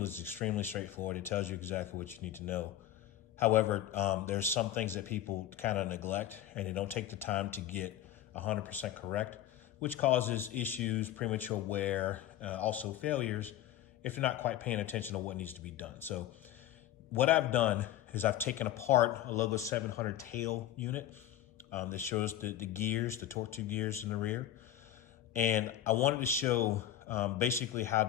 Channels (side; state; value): right; quieter; 12.0 dB